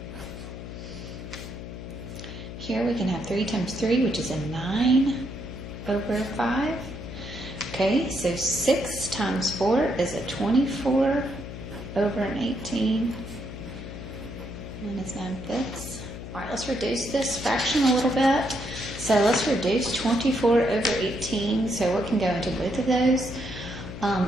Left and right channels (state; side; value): noise; left; hum, 10 dB below the sound